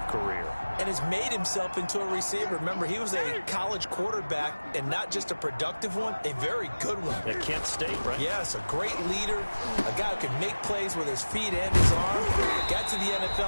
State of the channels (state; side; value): inverted; both; correlation -1.00